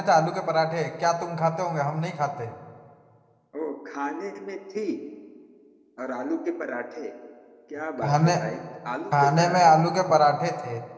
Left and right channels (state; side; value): identical; both; correlation 1.00